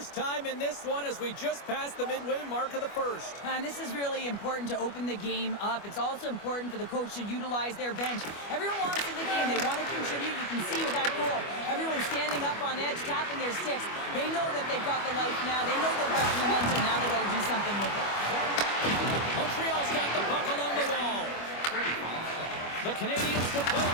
time in this one as we just passed the midway mark of the first. And this is really important to open the game up. It's also important for the coach to utilize their bench. Everyone wants in the game. They want to contribute. You can see with that goal. Everyone's standing up on edge, tapping their sticks. They know that they've got the life now. They know they've got the momentum. Now they've got to do something with it. Montreal's got the puck along the wall. The Canadiens to play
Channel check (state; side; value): late; right; 25 ms